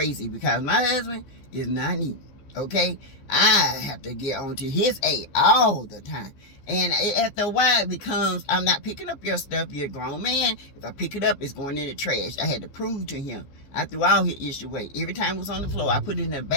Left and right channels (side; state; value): right; late; 15 ms